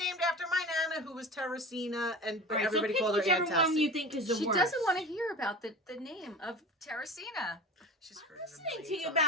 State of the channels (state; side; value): normal; both; correlation 0.35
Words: after my Nana, who was Teresina, and All right, everybody so pick called her whichever Aunt one Tessie. you think is the She worst. doesn't want to hear about the name of Teresina. She's heard I'm it a listening to million you